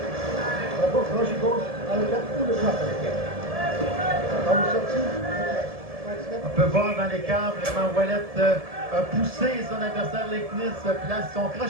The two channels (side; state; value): left; late; 1.7 ms